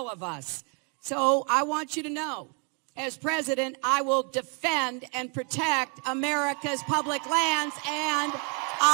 of us. So I want you to know, as president, I will defend and protect America's public lands and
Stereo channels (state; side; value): quieter; left; 36.4 dB